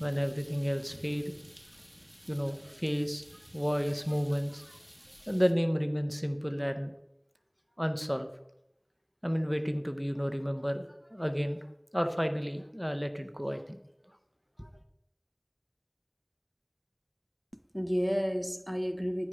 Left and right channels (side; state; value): both; identical; correlation 1.00